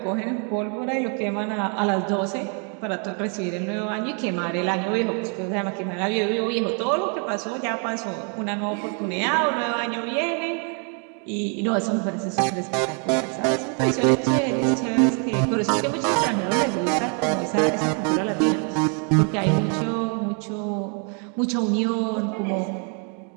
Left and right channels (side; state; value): left; quieter; 39.9 dB